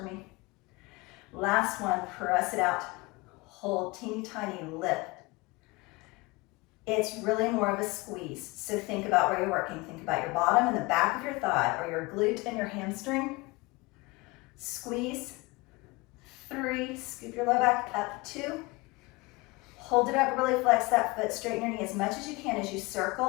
me. Last one. Press it out. Hold, teeny tiny lift. It's really more of a squeeze. So think about where you're working. Think about your bottom and the back of your thigh, or your glute and your hamstring. Squeeze. 3, scoop your low back up. 2, hold it up, really flex that foot, straighten your knee as much as you can as you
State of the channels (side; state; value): right; quieter; 23.9 dB